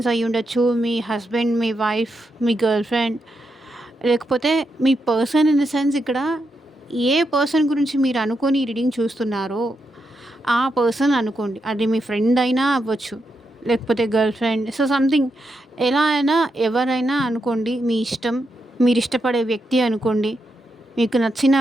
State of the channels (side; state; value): both; normal; correlation 0.84